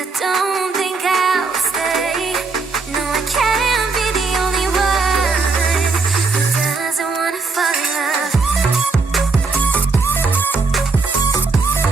don't think I'll stay. No, I can't be the only one who doesn't wanna fall in love.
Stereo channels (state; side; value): quieter; left; 4.2 dB